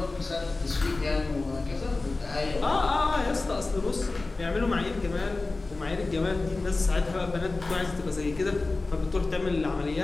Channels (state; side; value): quieter; right; 3.4 dB